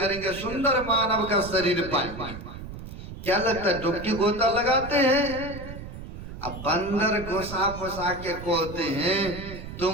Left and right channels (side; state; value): right; noise; rumble, 11 dB below the sound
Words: सुंदर मानव का शरीर पाएंगे। क्या लगता है डुबकी गोता लगाते हैं? अब बंदर घुसा फुसा के कहते हैं